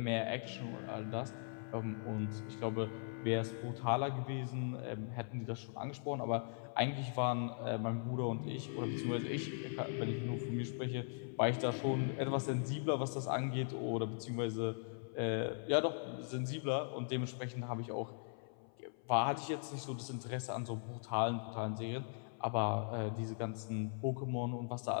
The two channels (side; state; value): right; silent; 51 dB below the other